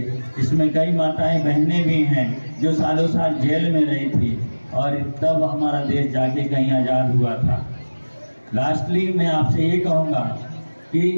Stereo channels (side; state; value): both; inverted; correlation -1.00